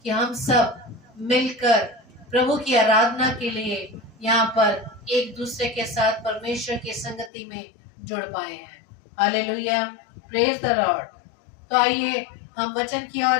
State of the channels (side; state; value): right; drops out; at 7.3 s